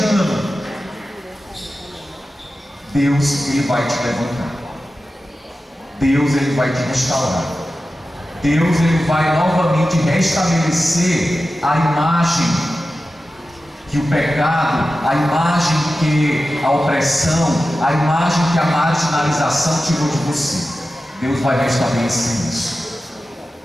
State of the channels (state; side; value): normal; both; correlation 0.93